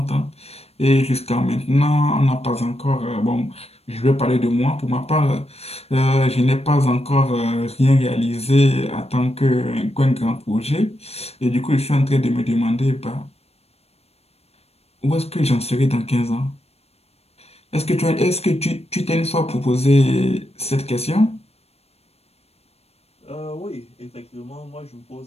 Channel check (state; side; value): late; right; 0.30 ms